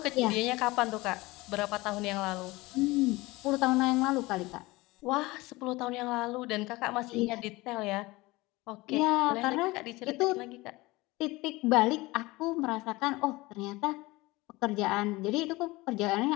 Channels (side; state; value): right; quieter; 21.2 dB